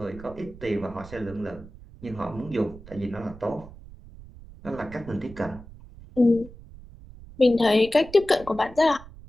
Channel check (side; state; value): right; noise; rumble, 18 dB below the sound